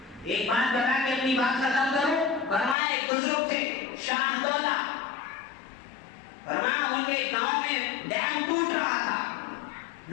ایک بات بتا کے اپنی بات ختم کروں. فرمایا ایک بزرگ تھے شاہ دولہ, فرمایا ان کے گاؤں میں ڈیم ٹوٹ رہا تھا.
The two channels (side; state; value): right; drops out; at 2.8 s